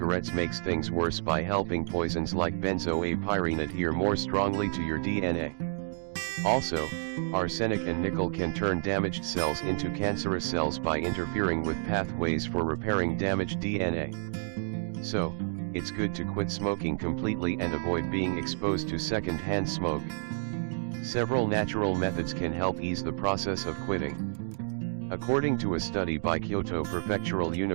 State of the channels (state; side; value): silent; left; digital silence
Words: makes things worse by helping poisons like benzoapyrene adhere more strongly to your DNA. Also, arsenic and nickel can turn damaged cells into cancerous cells by interfering with pathways for repairing damaged DNA. So, it's good to quit smoking completely and avoid being exposed to second-hand smoke. Several natural methods can help ease the process of quitting. According to a study by Kyoto Prefectural